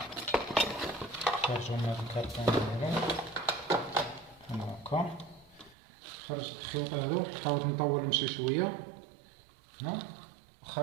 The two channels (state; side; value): drops out; left; at 5.8 s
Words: نخرجو من هاد الكرتون ديالهم هكا. خرجت الخيوط هادو، حاولت نطولهم شي شويه هنا